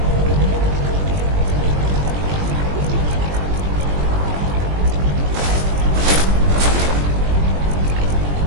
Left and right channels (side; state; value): left; late; 21 ms